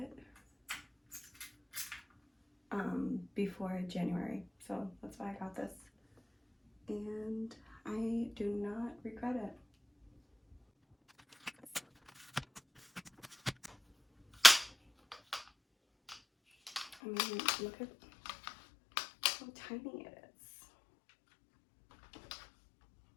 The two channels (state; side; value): drops out; right; at 16.9 s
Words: before January, so that's why I got this, and I do not regret it. I mean, look at how tiny it is.